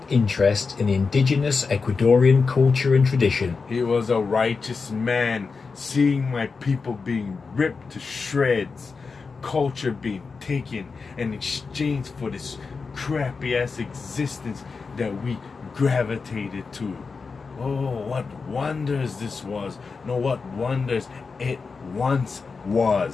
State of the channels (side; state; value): right; quieter; 4.7 dB